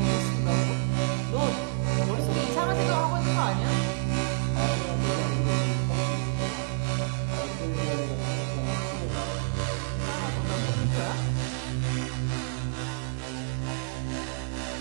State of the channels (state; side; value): silent; left; digital silence